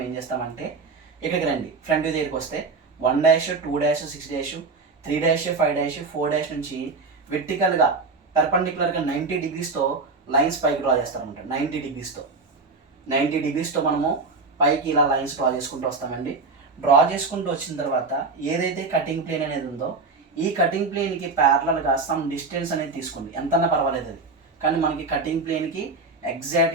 ఏం చేస్తామంటే ఇక్కడికి రండి. ఫ్రంట్ వ్యూ దగ్గరికి వస్తే 1', 2', 6', 3', 5', 4' నుంచి వెర్టికల్గా పర్పెండిక్యులర్గా 90 degreesతో లైన్స్ పైకి డ్రా చేస్తారనమాట. 90 degreesతో మనము పైకి ఇలా లైన్స్ డ్రా చేసుకుంటూ వస్తామండి. డ్రా చేసుకుంటూ వచ్చిన తర్వాత ఏదైతే కటింగ్ ప్లేన్ అనేది ఉందో ఈ కటింగ్ ప్లేన్కి ప్యారలల్గా సమ్ డిస్టెన్స్ అనేది తీసుకోండి, ఎంతన్నా పర్వాలేదు అది, కానీ మనకి కటింగ్ ప్లేన్కి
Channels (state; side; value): quieter; left; 4.0 dB